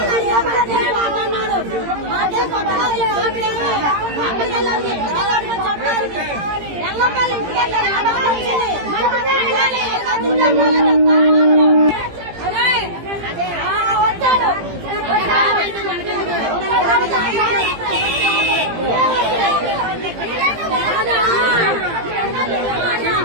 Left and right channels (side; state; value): left; late; 18 ms